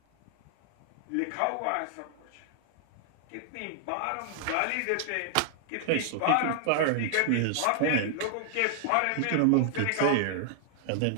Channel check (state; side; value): different; both; correlation 0.00